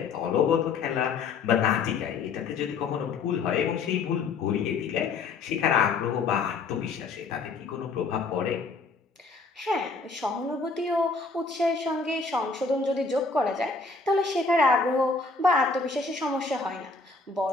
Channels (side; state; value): right; quieter; 4.3 dB